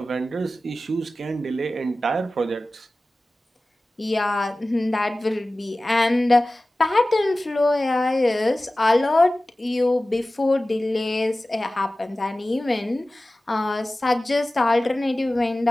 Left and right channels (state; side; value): normal; both; correlation 0.96